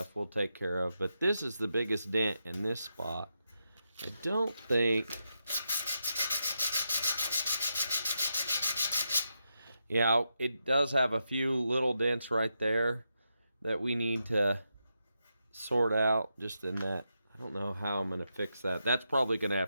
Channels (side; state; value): both; inverted; correlation -0.85